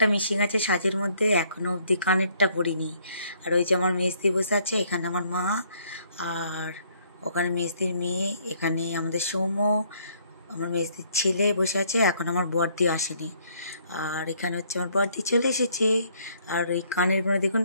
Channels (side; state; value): both; inverted; correlation -0.65